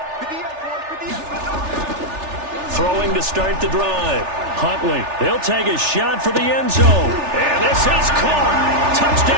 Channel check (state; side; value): late; left; 3.4 ms